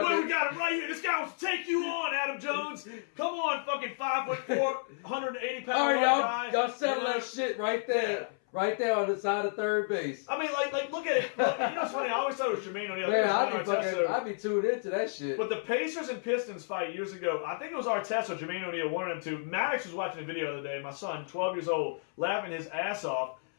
got him right here. This guy wants to take you on, Adam Jones. Come on, fucking 5'4", 180 pound all right, guy. Y'all settle that shit right there. Yeah. Right there on the side of third base. I mean, like look at it. Look, you know what's funny? I always thought it was Jermaine O'Neal. Man, I'd be tuned into that shit. But the Pacers and Pistons fight years ago, I think it was Artest or Jermaine O'Neal, one of them two. Maddox was watching a video the other day, my son, 12 years old, laughing his ass off.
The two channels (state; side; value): silent; right; 57 dB below the other